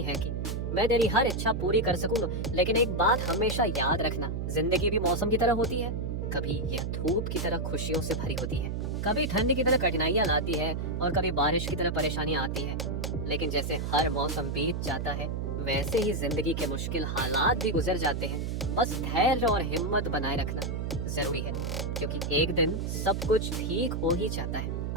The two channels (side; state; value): right; noise; hum, 2 dB below the sound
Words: है कि मैं तेरी हर इच्छा पूरी कर सकूं, लेकिन एक बात हमेशा याद रखना, जिंदगी भी मौसम की तरह होती है। कभी यह धूप की तरह खुशियों से भरी होती है, कभी ठंड की तरह कठिनाइयां लाती है और कभी बारिश की तरह परेशानियां आती है। लेकिन जैसे हर मौसम बीत जाता है वैसे ही जिंदगी के मुश्किल हालात भी गुजर जाते हैं। बस धैर्य और हिम्मत बनाए रखना जरूरी है, क्योंकि एक दिन सब कुछ ठीक हो ही जाता है।